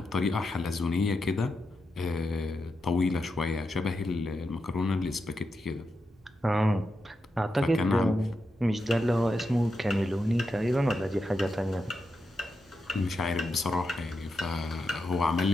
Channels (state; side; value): normal; both; correlation 0.86